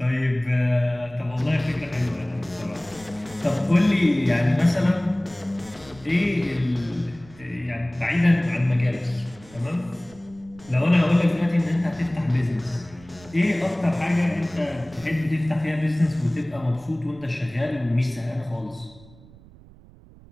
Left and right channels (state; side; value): noise; right; rumble, 23 dB below the sound